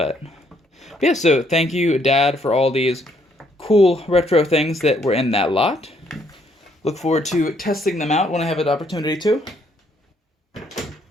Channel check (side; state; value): both; normal; correlation 0.69